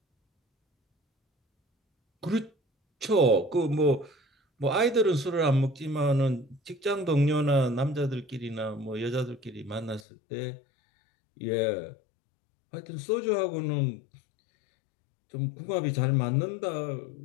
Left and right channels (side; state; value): right; drops out; at 10.0 s